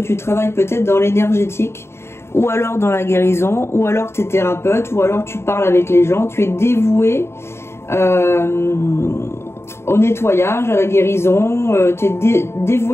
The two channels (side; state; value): right; late; 0.12 ms